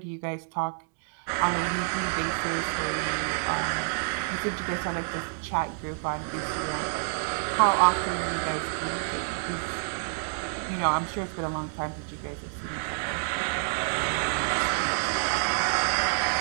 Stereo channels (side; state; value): left; silent; digital silence